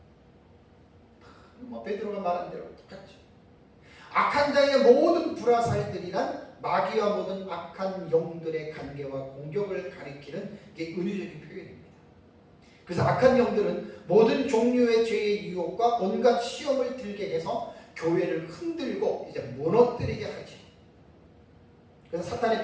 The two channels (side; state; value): both; identical; correlation 1.00